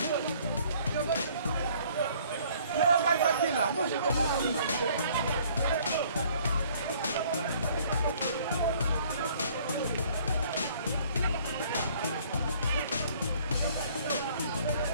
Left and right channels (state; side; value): inverted; both; correlation -0.58